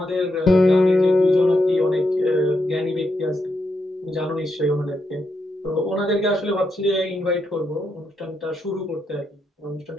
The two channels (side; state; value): both; normal; correlation 0.82